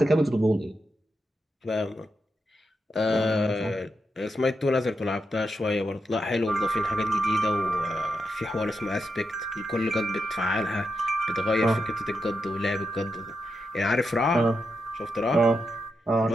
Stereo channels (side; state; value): both; normal; correlation 0.86